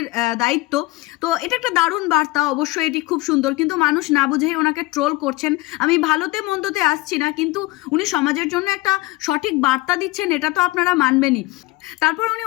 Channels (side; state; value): right; quieter; 20.9 dB